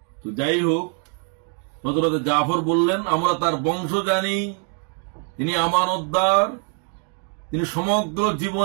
তো যাই হোক, হযরত জাফর বললেন, আমরা তার বংশ জানি, তিনি আমানতদার, তিনি সমগ্র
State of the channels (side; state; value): left; quieter; 39.8 dB